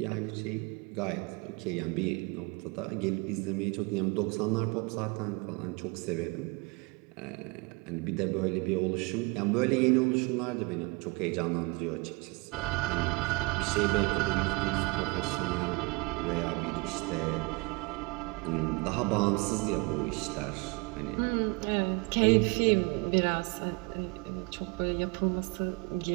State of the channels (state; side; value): quieter; left; 27.7 dB